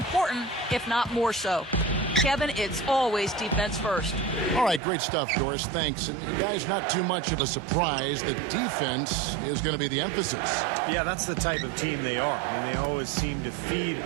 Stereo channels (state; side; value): drops out; left; at 4.8 s